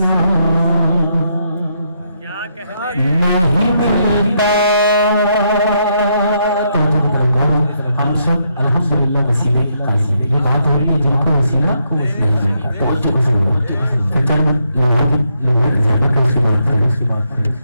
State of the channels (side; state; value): both; inverted; correlation -0.77